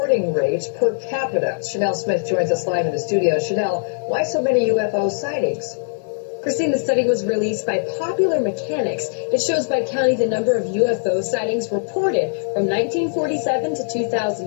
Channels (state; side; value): silent; right; 55 dB below the other